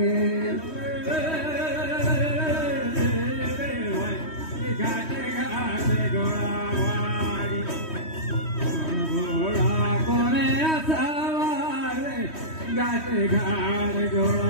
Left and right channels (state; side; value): late; right; 3.1 ms